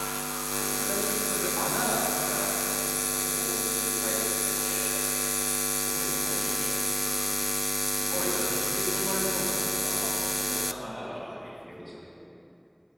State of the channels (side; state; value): both; identical; correlation 1.00